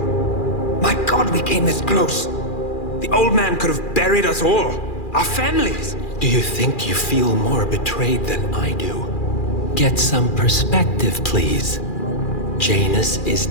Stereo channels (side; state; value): right; late; 2.4 ms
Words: My God, we came this close. The old man could have buried us all. Our families. Do you think you feel more betrayed than I do? Get some perspective, please. Janus is